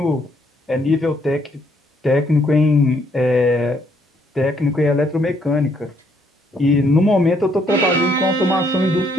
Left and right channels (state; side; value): normal; both; correlation 0.70